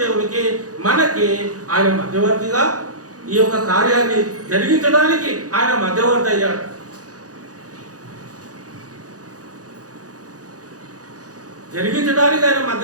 దేవునికి మనకి ఆయన మధ్యవర్తిగా ఈ యొక్క కార్యాన్ని జరిగించడానికి ఆయన మధ్యవర్తి అయ్యాడు. జరిగించడానికి ఆయన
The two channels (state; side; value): late; left; 0.67 ms